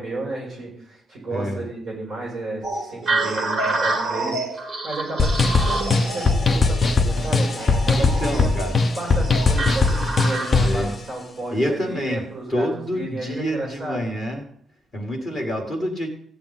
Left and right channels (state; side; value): normal; both; correlation 0.78